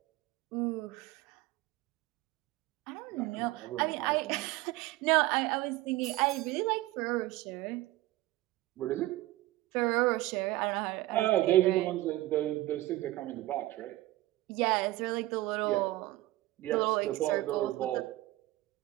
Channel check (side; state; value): left; quieter; 17.6 dB